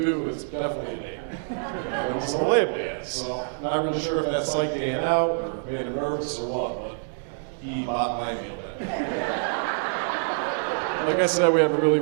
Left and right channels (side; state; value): left; silent; digital silence